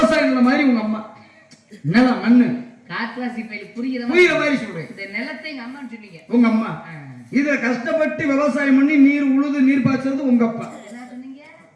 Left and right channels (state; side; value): identical; both; correlation 1.00